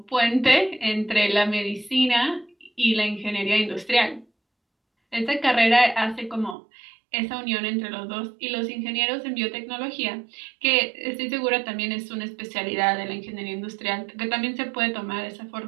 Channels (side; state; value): left; drops out; at 6.6 s